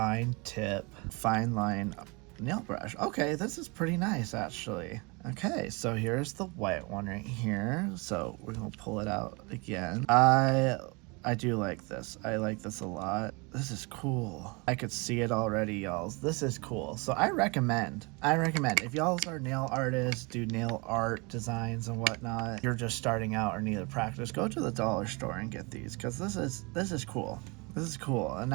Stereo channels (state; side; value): quieter; left; 28.7 dB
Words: tip, fine line nail brush. Okay, this is pretty nice actually. Okay, so here's the white one right here. So we're gonna pull it out again. I do like this. I like this a lot. This is cool. I could see it already, y'all. This is cool. So I recommend if y'all are nail artists, do nail art designs and whatnot, you're just starting out or need to practice, go to the dollar store and get these, because this is cool. This is cool. And